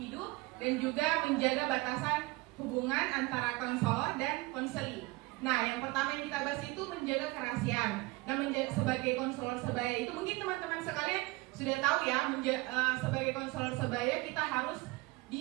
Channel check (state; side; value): quieter; left; 22.8 dB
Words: dan juga menjaga batasan hubungan antara konselor dan konseli. Nah, yang pertama yang kita bahas itu menjaga kerahasiaan. Nah, sebagai konselor sebaya itu mungkin teman-teman sekalian sudah tahu ya, sebagai konselor sebaya kita harus